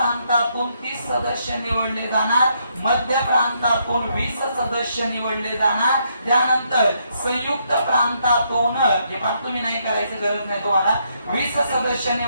30 सदस्य निवडले जाणार. मध्य प्रांतातून 20 सदस्य निवडले जाणार. त्यानंतर संयुक्त प्रांतातून हे पण तुम्ही नाही करायची गरज नाही तुम्हाला 20 सदस्य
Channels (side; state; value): both; inverted; correlation -0.74